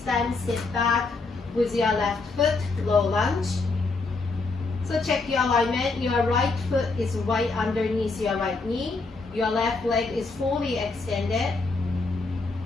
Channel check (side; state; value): right; quieter; 3.8 dB